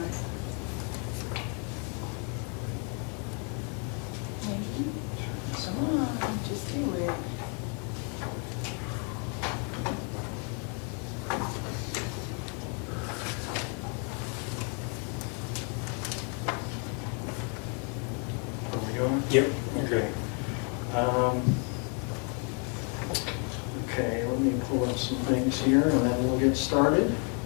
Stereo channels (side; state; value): right; quieter; 38.1 dB